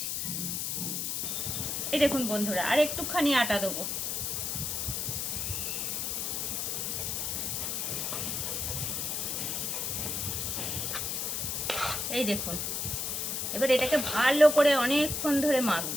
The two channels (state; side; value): noise; left; hiss, 1 dB below the sound